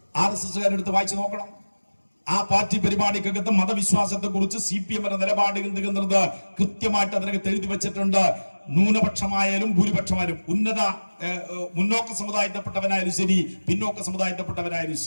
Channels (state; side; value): inverted; both; correlation -1.00